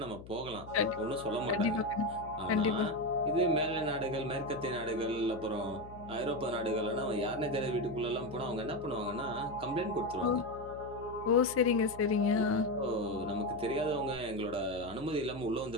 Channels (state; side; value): noise; left; hum, 16 dB below the sound